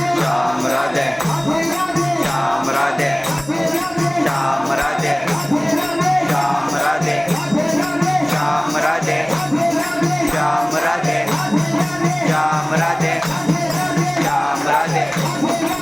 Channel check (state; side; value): noise; right; hum, 23 dB below the sound